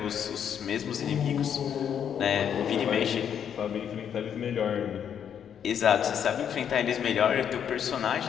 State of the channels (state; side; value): quieter; right; 8.5 dB